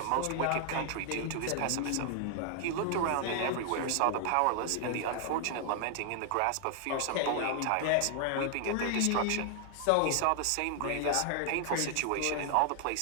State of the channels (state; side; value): different; both; correlation 0.00